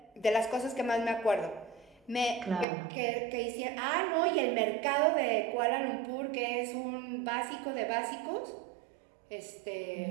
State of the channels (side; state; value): left; drops out; at 2.7 s